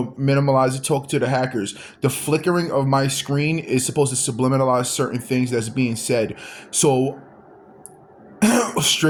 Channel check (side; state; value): both; identical; correlation 1.00